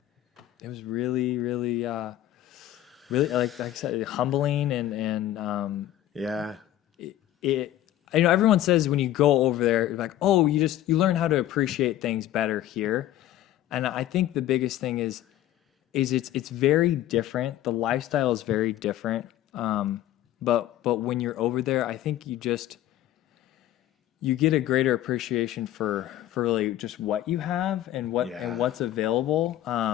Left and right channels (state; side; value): quieter; right; 13.3 dB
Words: was really like I said, humbling and everyone says when you go over there, you're like, oh, you learn how to appreciate things better here. And I think the biggest thing is it's very different. The lifestyle is very different. But when you're over there, I think you get a greater appreciation for really just what you have and what's available.